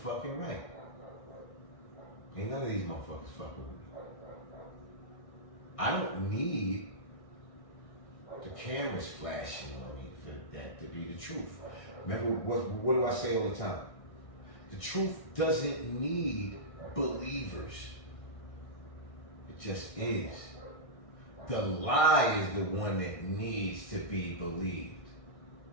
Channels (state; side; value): late; right; 1.6 ms